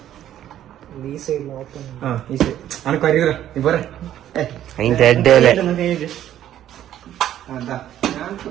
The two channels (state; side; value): quieter; left; 11.6 dB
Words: ഈ സൈഡിൽ ഓപ്പൺ അനക്ക് അറിയൂറ നീ പോരെ. അതിന്റെ അഡ്ഡല്ലേ ഞങ്ങൾക്ക്